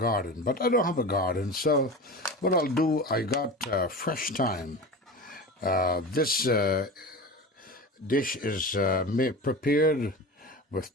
but I don't have a garden. So what I'll do, I got fresh thyme. This dish is prepared with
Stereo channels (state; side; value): normal; both; correlation 0.30